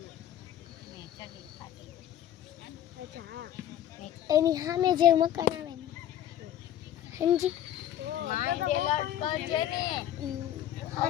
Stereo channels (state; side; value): quieter; right; 11.3 dB